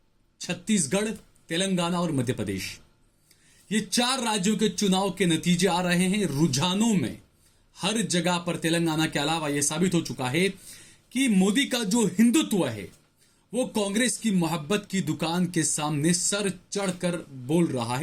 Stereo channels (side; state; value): both; identical; correlation 1.00